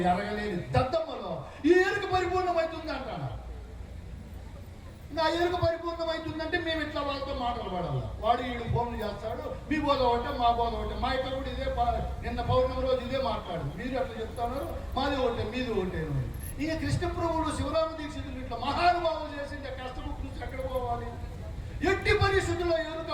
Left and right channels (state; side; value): identical; both; correlation 1.00